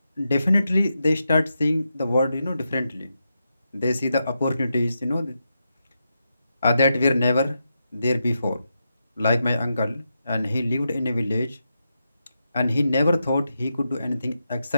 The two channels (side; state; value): both; inverted; correlation -0.86